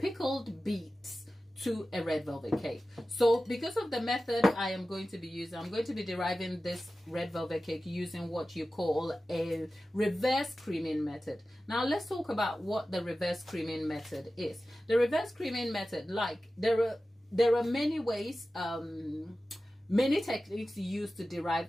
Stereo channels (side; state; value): both; normal; correlation 0.95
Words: beets to a red velvet cake. So because of the method I am going to be using, I'm going to be deriving this red velvet cake using what you call a reverse creaming method. Now let's talk about what the reverse creaming method is. The reverse creaming method, like there are many ways, many techniques used to